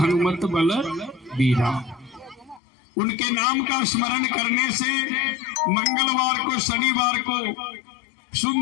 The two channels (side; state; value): right; drops out; at 2.6 s